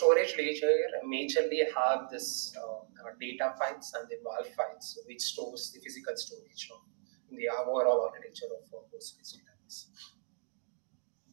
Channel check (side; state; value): left; silent; digital silence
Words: layer majorly have this data files and the WAL files, which stores the physical storage of in the overall architecture of Postgres database.